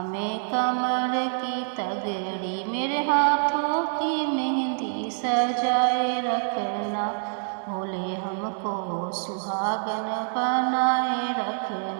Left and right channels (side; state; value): left; silent; 57 dB below the other